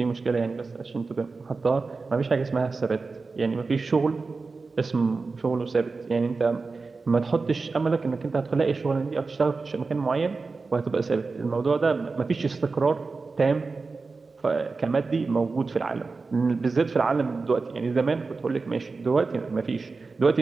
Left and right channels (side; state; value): left; quieter; 4.1 dB